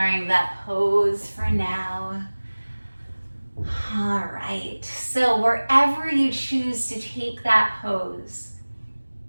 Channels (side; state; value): both; inverted; correlation -1.00